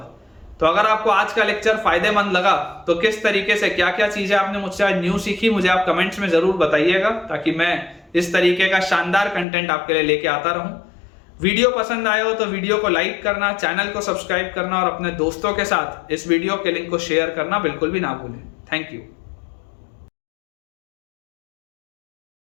तो अगर आपको आज का लेक्चर फायदेमंद लगा तो किस तरीके से क्या क्या चीजें आपने मुझसे आज न्यू सीखी, मुझे आप कमेंट्स में जरूर बताइएगा, ताकि मैं इस तरीके का शानदार कंटेंट आपके लिए लेके आता रहूं। वीडियो पसंद आया हो तो वीडियो को लाइक करना, चैनल को सब्सक्राइब करना, और अपने दोस्तों के साथ इस वीडियो के लिंक को शेयर करना बिल्कुल भी ना भूलें। Thank you.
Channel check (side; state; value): right; drops out; at 9.5 s